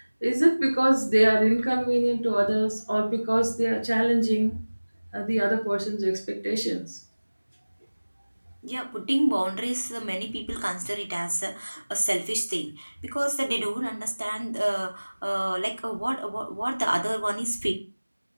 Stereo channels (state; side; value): inverted; both; correlation -1.00